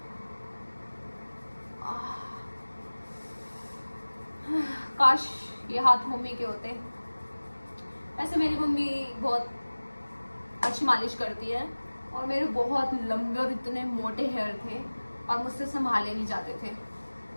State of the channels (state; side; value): inverted; both; correlation -1.00